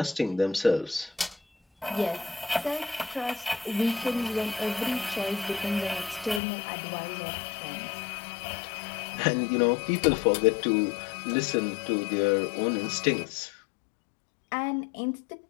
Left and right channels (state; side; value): drops out; right; at 6.4 s